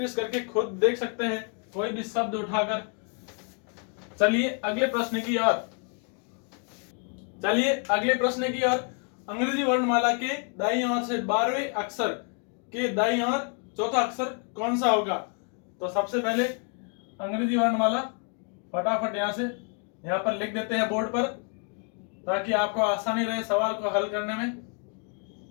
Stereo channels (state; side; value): quieter; right; 39.7 dB